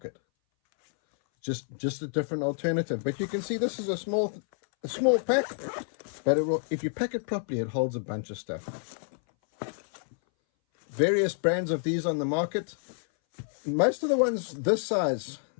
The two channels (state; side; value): silent; right; 59 dB below the other